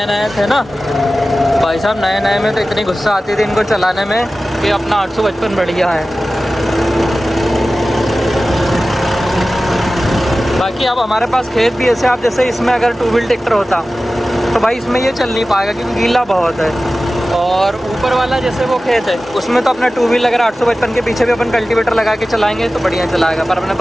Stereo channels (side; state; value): both; normal; correlation 0.96